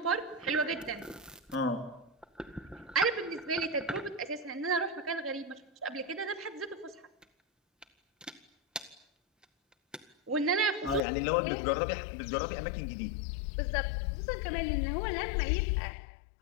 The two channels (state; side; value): drops out; right; at 11.0 s